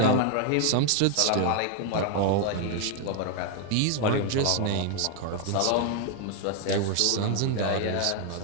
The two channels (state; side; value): different; both; correlation 0.00